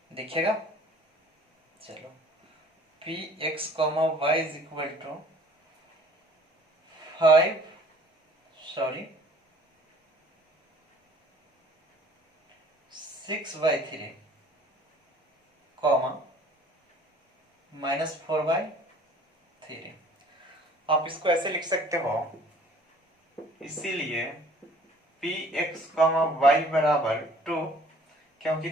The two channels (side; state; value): both; normal; correlation 0.53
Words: दिखेगा, चलो Px, y = 6/3, -4/3। आप इसको ऐसे लिख सकते हो, इसीलिए Px, y बराबर 2, क्योंकि